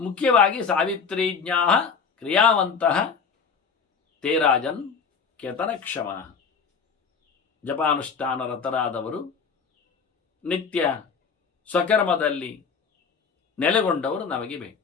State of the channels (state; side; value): quieter; right; 5.7 dB